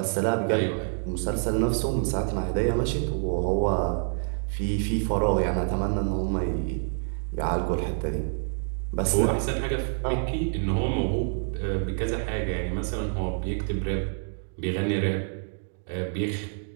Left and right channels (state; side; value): silent; left; digital silence